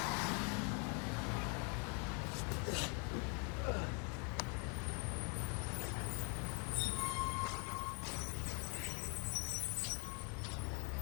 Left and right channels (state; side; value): quieter; right; 36.8 dB